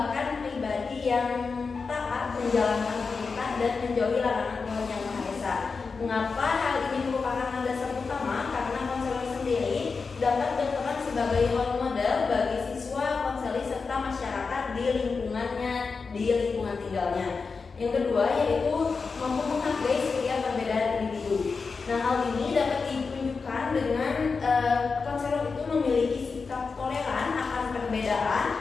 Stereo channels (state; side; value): quieter; right; 4.8 dB